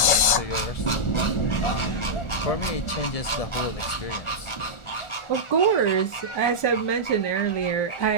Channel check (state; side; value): late; right; 1.4 ms